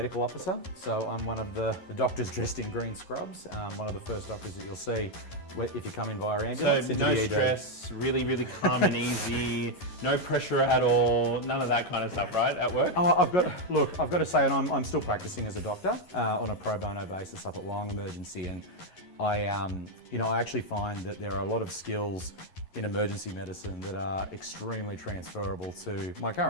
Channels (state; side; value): late; right; 11 ms